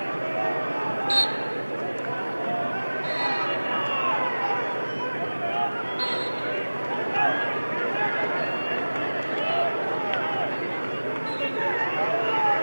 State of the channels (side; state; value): both; inverted; correlation -1.00